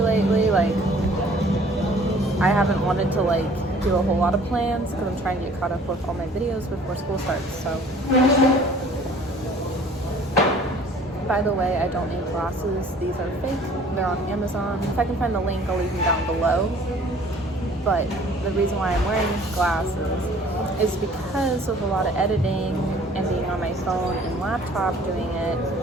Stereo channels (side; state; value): both; normal; correlation 0.53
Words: like, I haven't wanted to like do a whole lot of plans because I'm trying to get caught up with all my videos before school starts. So, by the way, I don't need glasses. These are fake. They're on Amazon. If I can find the link, I'll leave them down below. But the reason why I'm wearing glasses is because of a lot of editing and being on my phone and laptop doing it,